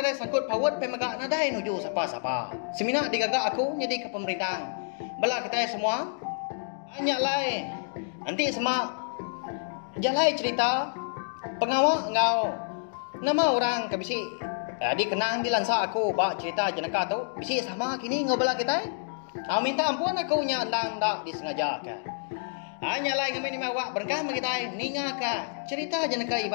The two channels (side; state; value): right; silent; digital silence